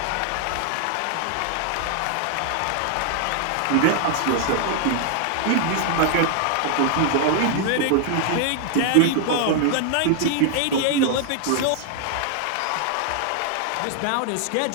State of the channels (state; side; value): different; both; correlation 0.00